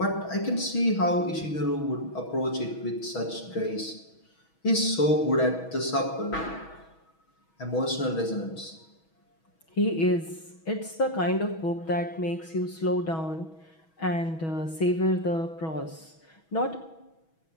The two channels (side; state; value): right; late; 6.2 ms